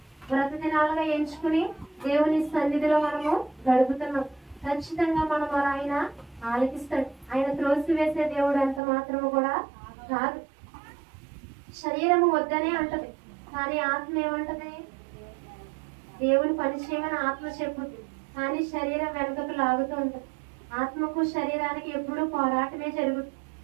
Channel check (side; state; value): left; drops out; at 8.8 s